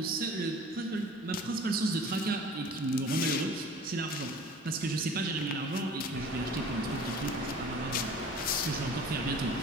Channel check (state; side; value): normal; both; correlation 0.45